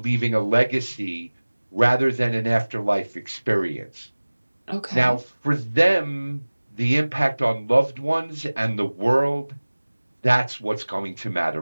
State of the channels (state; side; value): inverted; both; correlation -1.00